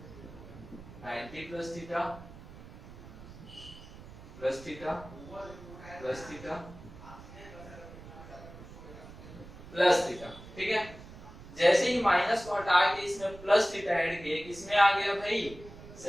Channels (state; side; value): noise; right; rumble, 16 dB below the sound